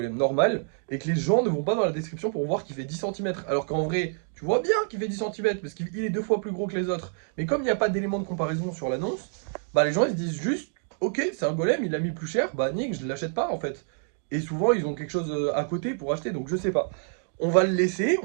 normal, et que les gens ne vont pas dans la description pour voir qu'il fait 10 cm. Alors qu'en vrai, tu vois bien qu'il fait 10 cm parce qu'il est 2 fois plus gros que les autres. Mais comme il n'y a pas d'élément de comparaison sur l'annonce, bah les gens ils se disent juste, ok, c'est un golem, il a mis plus cher, bah nique, je l'achète pas en fait. Et souvent ils ont quelque chose à côté pour acheter, donc je sais pas. On va le laisser,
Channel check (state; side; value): silent; left; 60 dB below the other